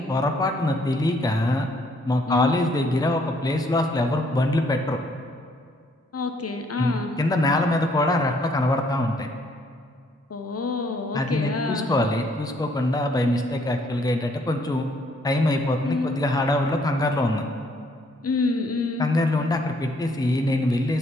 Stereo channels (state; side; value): normal; both; correlation 0.66